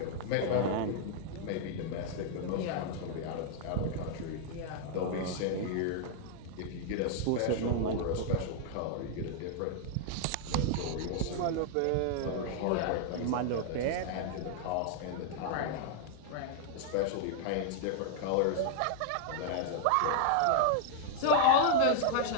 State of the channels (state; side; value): different; both; correlation -0.01